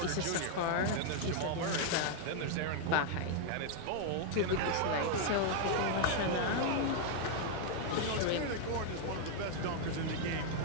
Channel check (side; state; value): both; different; correlation 0.00